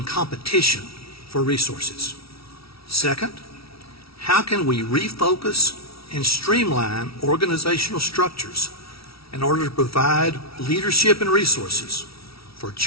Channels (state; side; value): late; right; 0.76 ms